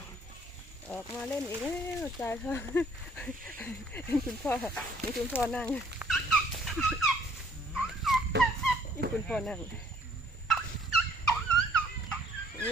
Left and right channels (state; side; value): normal; both; correlation 0.61